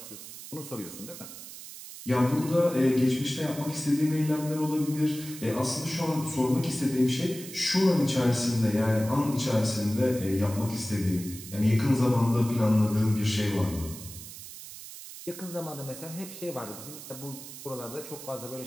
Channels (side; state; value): right; noise; hiss, 13 dB below the sound